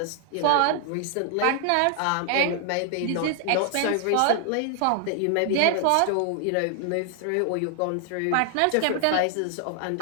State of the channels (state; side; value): different; both; correlation 0.00